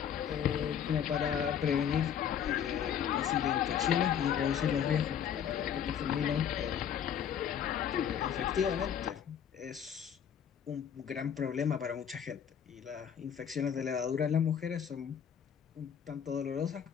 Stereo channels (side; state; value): right; quieter; 8.5 dB